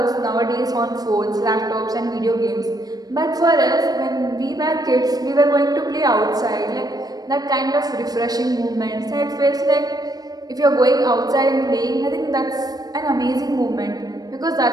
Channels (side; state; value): left; late; 0.19 ms